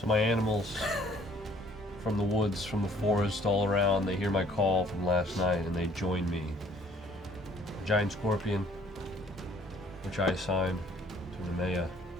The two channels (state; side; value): normal; both; correlation 0.59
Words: my animals from the woods, from the forest, all around, they hear my call from last night and they join me. A giant scorpion, which I assigned to Nemea.